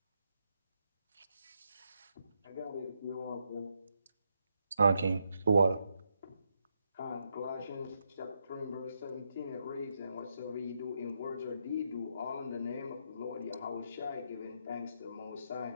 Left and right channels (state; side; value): inverted; both; correlation -0.81